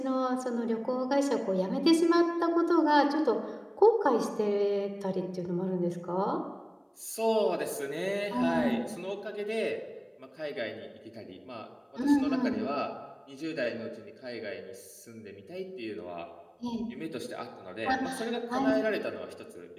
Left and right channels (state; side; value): identical; both; correlation 1.00